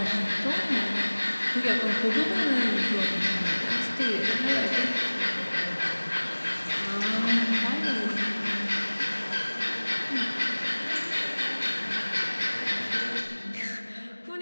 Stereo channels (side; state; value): both; inverted; correlation -1.00